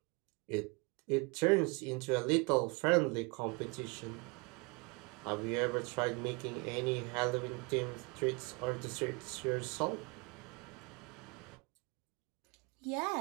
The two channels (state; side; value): quieter; left; 29.3 dB